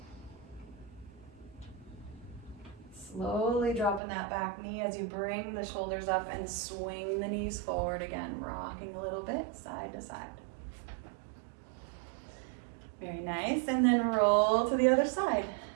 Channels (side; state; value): left; drops out; at 4.0 s